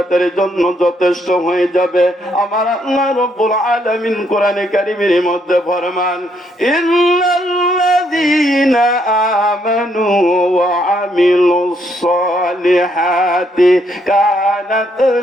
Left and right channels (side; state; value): both; normal; correlation 0.73